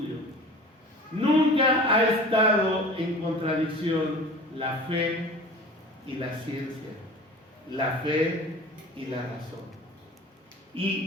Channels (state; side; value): normal; both; correlation 0.40